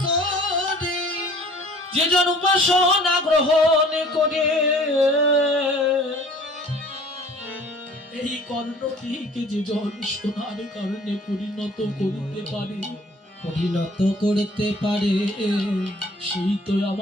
যে জন উপাসনা গ্রহণ করে, এই কর্ণটিকে যে জন সোনার কারণে পরিণত করতে পারে, সেই তো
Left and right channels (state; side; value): normal; both; correlation 0.51